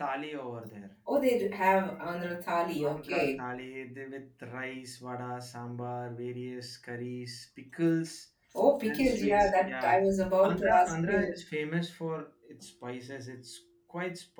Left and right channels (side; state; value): both; identical; correlation 1.00